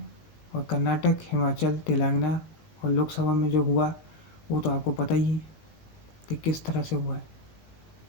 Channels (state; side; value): late; right; 20 ms